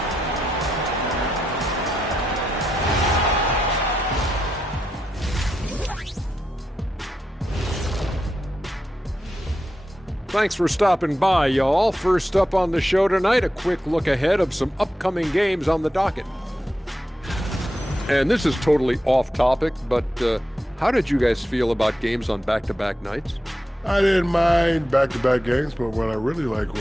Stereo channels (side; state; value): both; normal; correlation 0.86